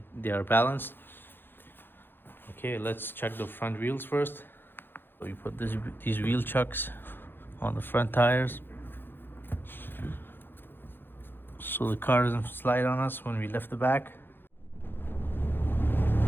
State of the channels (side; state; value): right; late; 0.10 ms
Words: they are balanced. Okay, let's check the front wheels first. So we put these wheel chucks on the front tires so the car doesn't slide on us when we lift the back.